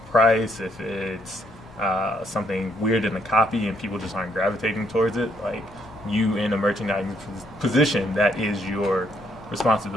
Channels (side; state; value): both; normal; correlation 0.72